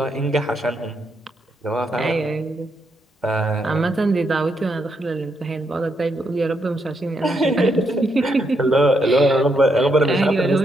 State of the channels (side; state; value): both; normal; correlation 0.79